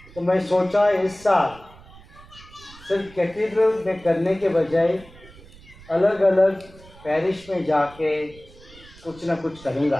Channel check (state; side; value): noise; right; rumble, 22 dB below the sound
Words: तो मैं सोचा इस साल सिर्फ कैथेड्रल में करने के बजाय अलग अलग पैरिश में जाके कुछ ना कुछ करूँगा।